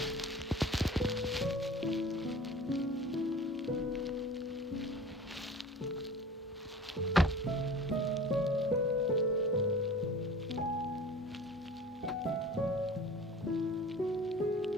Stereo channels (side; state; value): both; normal; correlation 0.41